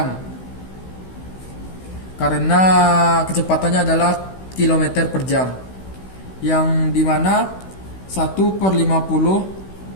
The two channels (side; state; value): right; late; 16 ms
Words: Karena kecepatannya adalah kilometer per jam. Yang dimana 1/50